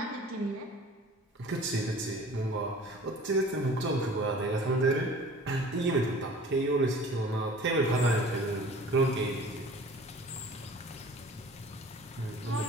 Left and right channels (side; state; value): both; normal; correlation 0.45